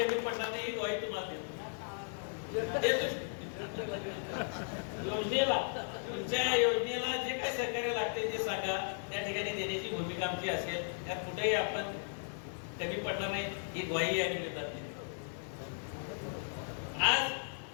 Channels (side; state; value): right; silent; 54 dB below the other